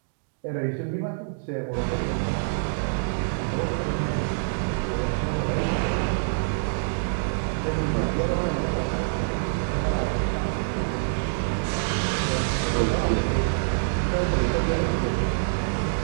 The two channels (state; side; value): silent; left; digital silence